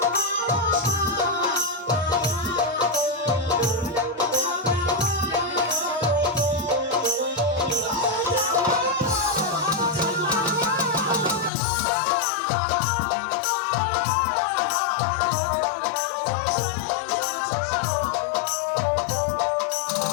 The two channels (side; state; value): right; drops out; at 11.5 s